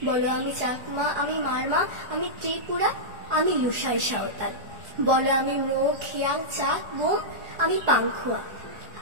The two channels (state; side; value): late; left; 4.7 ms